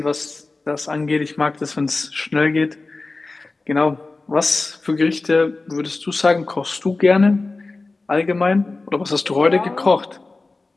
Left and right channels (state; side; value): quieter; right; 3.5 dB